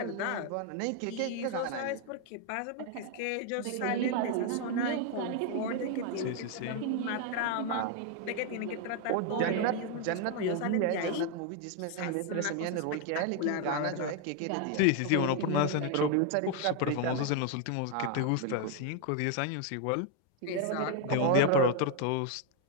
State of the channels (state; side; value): different; both; correlation 0.01